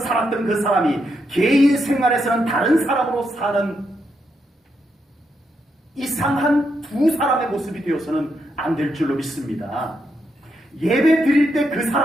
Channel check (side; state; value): both; normal; correlation 0.81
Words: 그 사람이 개인 생활에서는 다른 사람으로 사는 이상한 두 사람의 모습이 되어서는 안 될 줄로 믿습니다. 예배 드릴 때 그